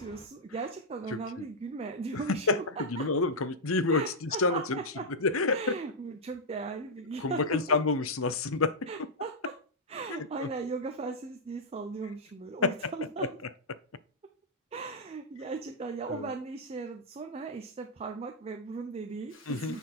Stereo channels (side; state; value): both; normal; correlation -0.06